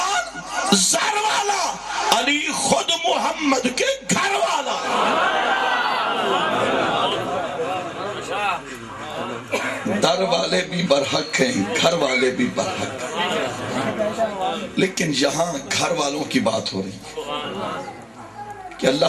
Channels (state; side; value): identical; both; correlation 1.00